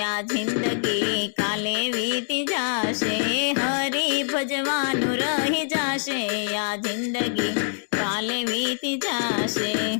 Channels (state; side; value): silent; right; digital silence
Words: आ जिंदगी काले बीती जाशे। हरि भजवानु रही जाशे आ जिंदगी काले बीती जाशे।